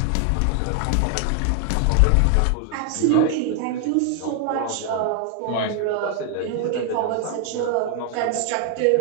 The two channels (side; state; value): both; different; correlation 0.00